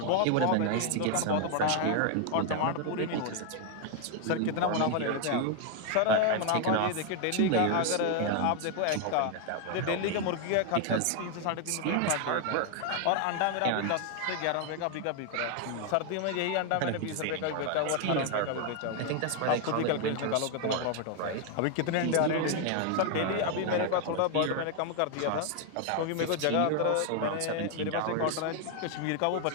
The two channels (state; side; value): different; both; correlation 0.01